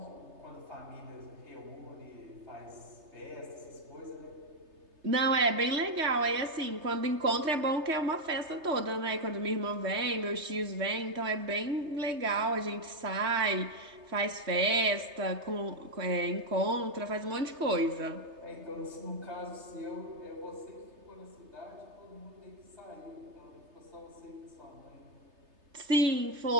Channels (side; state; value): left; late; 3.3 ms